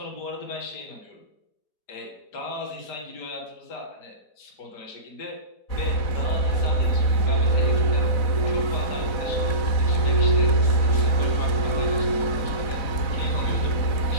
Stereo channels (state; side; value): late; right; 4.1 ms